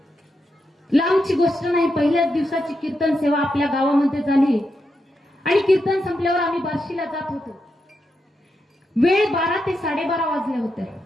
लांबची गोष्ट नाही, पहिल्याच दिवसाची कीर्तन सेवा आपल्या गावामध्ये झाली आणि कीर्तन संपल्यावर आम्ही बार्शीला जात होतो। वेळ 12 ते 12:30 वाजले होते।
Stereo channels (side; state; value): both; normal; correlation 0.85